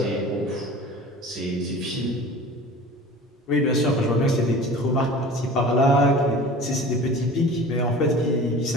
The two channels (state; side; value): normal; both; correlation 0.40